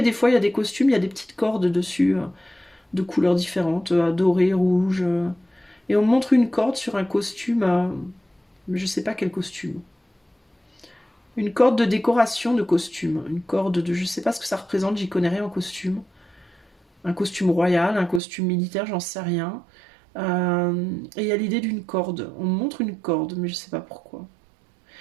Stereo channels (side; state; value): left; drops out; at 18.2 s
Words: des fois il y a des costumes, il y a des petites cordes dessus, de couleurs différentes, dorées, rouges. Et on montre une corde sur un costume, mais je sais pas quel costume. Une corde de décoration de costume. Une corde de... Je sais pas ce que ça représente, j'y connais rien en costume. Un costume royal, un costume militaire, j'en sais rien. Et il y a l'idée d'une corde. On montre une corde, mais je sais pas pourquoi.